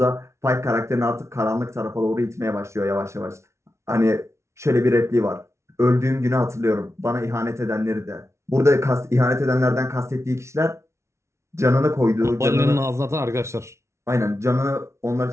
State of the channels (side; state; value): left; late; 0.13 ms